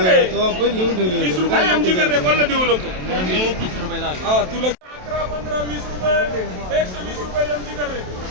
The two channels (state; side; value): late; left; 27 ms